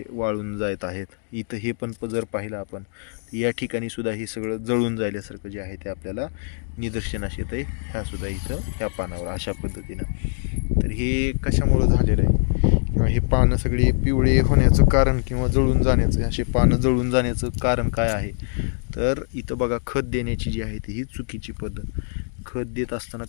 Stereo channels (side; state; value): right; silent; digital silence